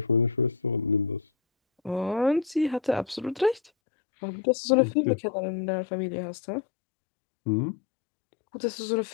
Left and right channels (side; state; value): right; drops out; at 3.7 s